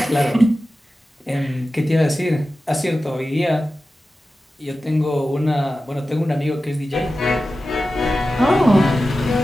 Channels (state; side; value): normal; both; correlation 0.94